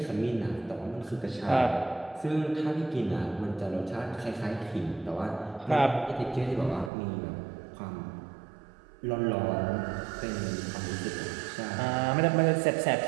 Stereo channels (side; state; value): left; drops out; at 6.9 s